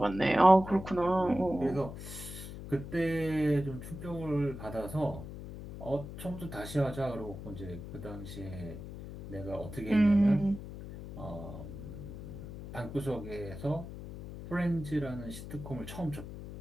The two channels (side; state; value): left; noise; hum, 11 dB below the sound